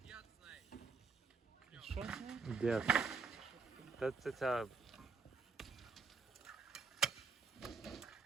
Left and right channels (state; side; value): quieter; left; 4.8 dB